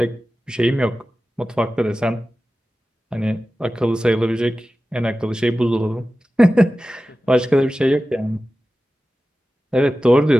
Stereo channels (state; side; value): normal; both; correlation 0.95